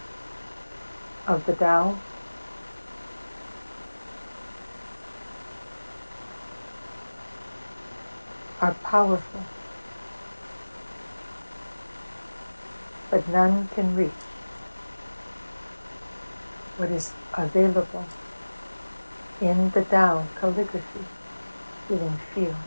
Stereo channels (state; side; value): inverted; both; correlation -1.00